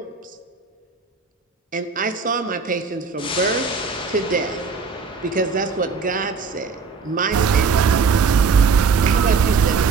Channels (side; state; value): left; quieter; 5.2 dB